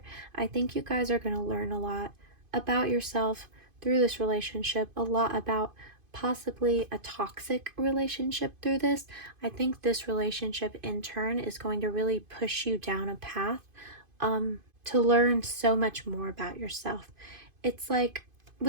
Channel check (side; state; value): left; late; 2.5 ms